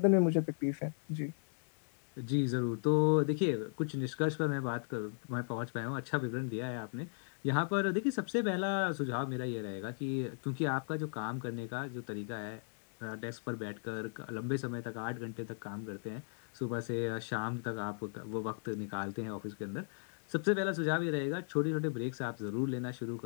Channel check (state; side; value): silent; right; digital silence